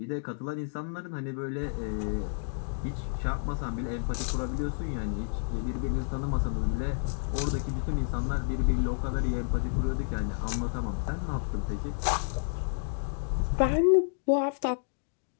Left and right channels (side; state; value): right; silent; digital silence